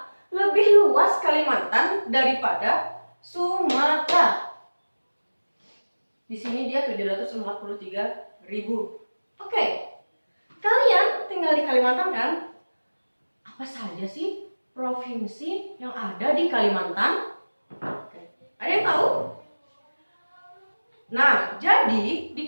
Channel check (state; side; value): inverted; both; correlation -1.00